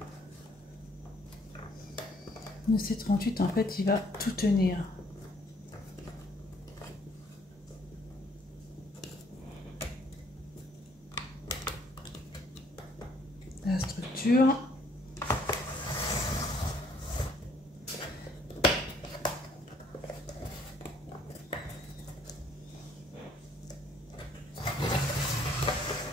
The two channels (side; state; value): both; normal; correlation 0.63